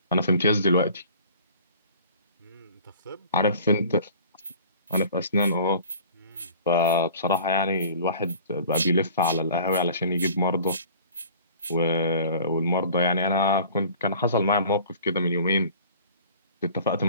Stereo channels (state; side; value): inverted; both; correlation -0.47